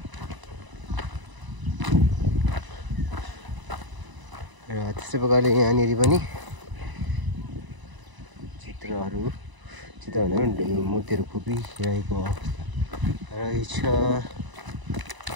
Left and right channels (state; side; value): late; left; 1.0 ms